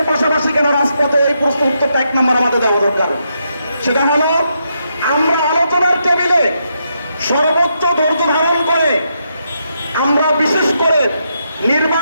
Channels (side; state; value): both; inverted; correlation -0.80